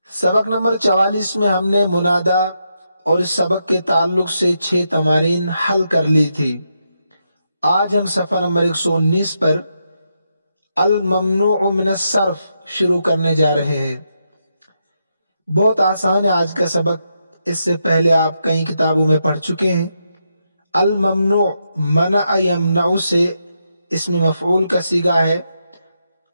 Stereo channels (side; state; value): both; inverted; correlation -0.83